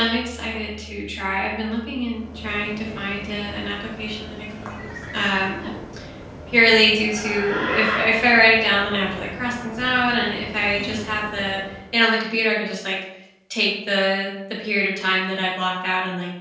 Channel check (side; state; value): both; identical; correlation 1.00